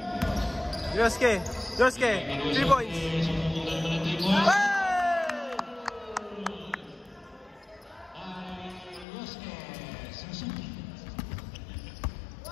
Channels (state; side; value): drops out; right; at 9.1 s